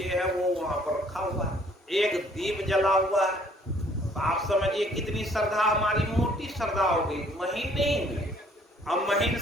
है वो वहां पर रखा हुआ है, एक दीप जला हुआ है। तो आप समझिए कितनी श्रद्धा, हमारी मोटी श्रद्धा होगी, महीन नहीं। हम महीन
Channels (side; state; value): both; normal; correlation 0.61